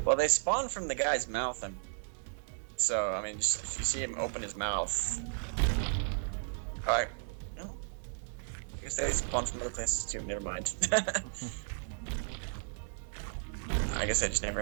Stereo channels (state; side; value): silent; left; digital silence